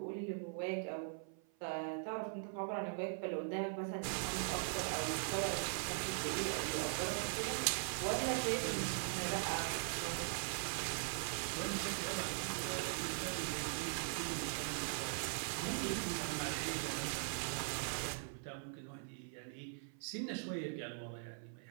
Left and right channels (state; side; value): silent; left; 50 dB below the other